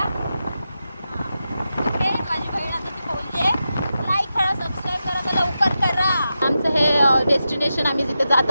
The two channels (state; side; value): inverted; both; correlation -0.90